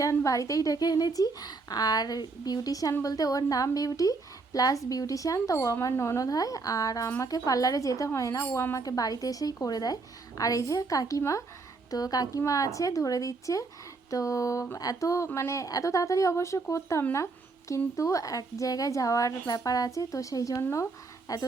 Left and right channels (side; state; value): left; quieter; 4.0 dB